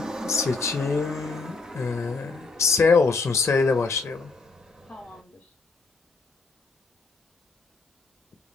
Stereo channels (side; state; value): right; quieter; 4.1 dB